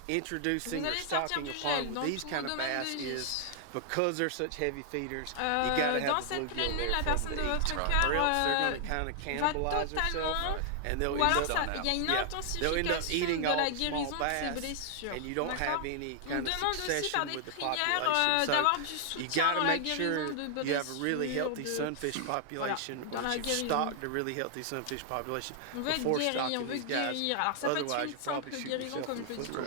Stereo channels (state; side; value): different; both; correlation 0.00